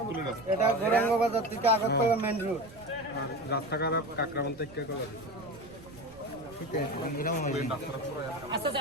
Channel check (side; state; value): right; noise; rumble, 24 dB below the sound